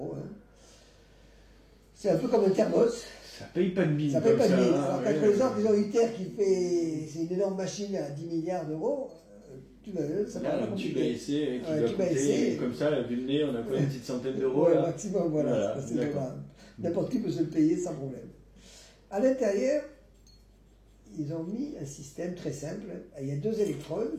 Hein. C'est un peu comme un thermos. Ça paye pas de mine. Ça paye pas de mine. Alors, quand par exemple, ils ont ITER qui fait. C'est une énorme machine à 10 milliards d'euros. Ça paraît un tube à essai qui doit coûter, comme ça, vu le nez, on a quoi, une petite centaine d'euros. Ouais, maximum, voilà. N'importe qui peut se le payer sans problème. À l'intérieur, ils ont mis un système très simple. Il y a deux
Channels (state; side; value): identical; both; correlation 1.00